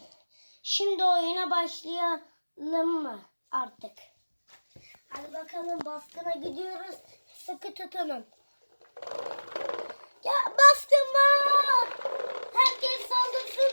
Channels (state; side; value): inverted; both; correlation -1.00